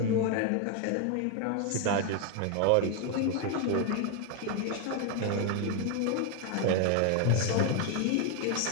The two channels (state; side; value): different; both; correlation 0.01